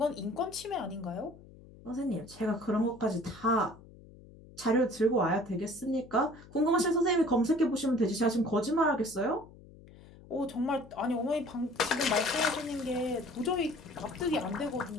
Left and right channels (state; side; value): noise; left; hum, 21 dB below the sound